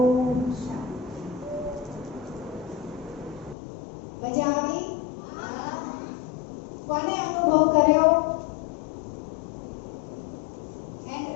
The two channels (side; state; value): right; drops out; at 3.6 s